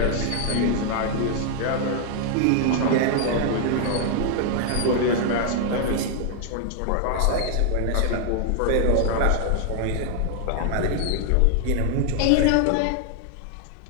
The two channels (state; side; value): different; both; correlation 0.00